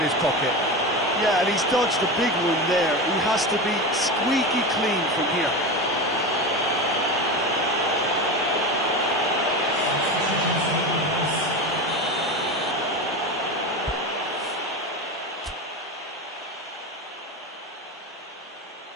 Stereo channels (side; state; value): both; normal; correlation 0.23